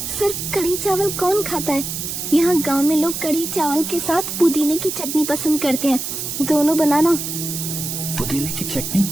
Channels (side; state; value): right; noise; hiss, 5 dB below the sound